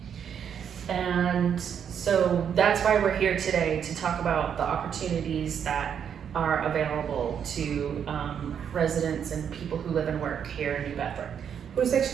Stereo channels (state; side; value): quieter; left; 8.1 dB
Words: And so that's why we're here today, to talk about the opportunities that are available to residents and people who live and work here in New Bedford. Por isso é que